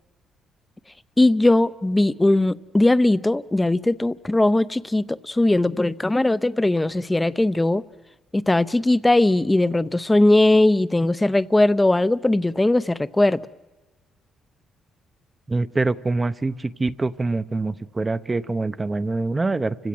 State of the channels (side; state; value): both; normal; correlation 0.98